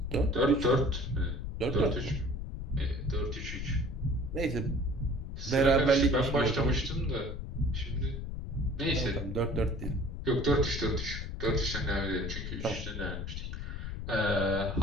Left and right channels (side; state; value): left; noise; rumble, 6 dB below the sound